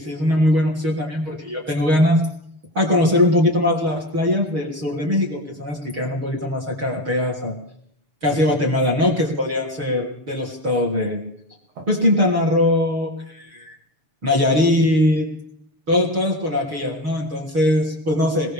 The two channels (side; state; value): left; late; 6.3 ms